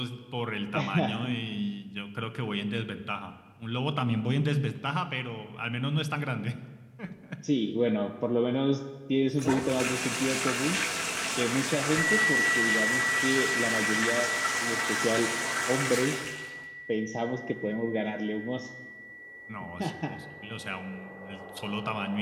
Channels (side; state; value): both; identical; correlation 1.00